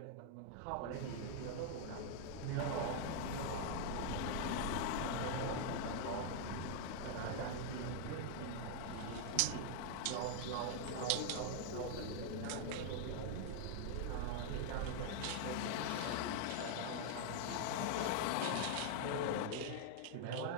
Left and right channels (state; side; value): different; both; correlation 0.00